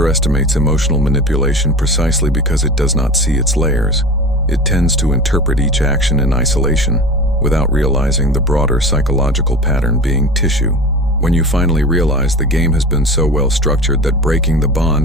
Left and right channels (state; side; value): normal; both; correlation 0.34